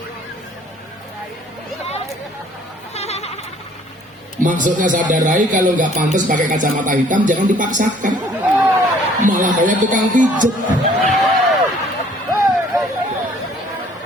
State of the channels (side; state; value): both; normal; correlation 0.58